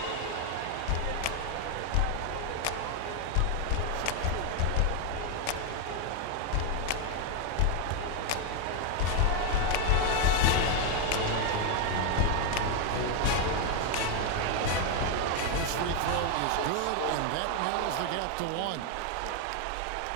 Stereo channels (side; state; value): both; different; correlation 0.01